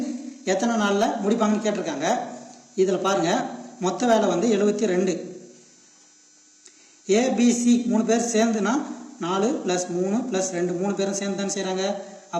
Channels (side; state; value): both; identical; correlation 1.00